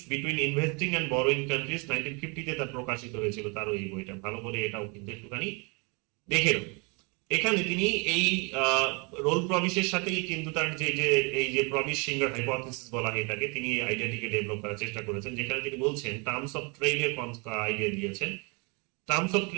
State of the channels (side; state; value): left; quieter; 31.6 dB